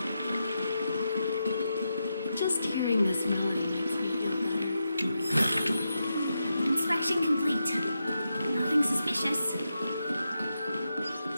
Just hearing this melody makes me feel better. Inspection complete. Nothing suspicious.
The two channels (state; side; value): inverted; both; correlation -0.87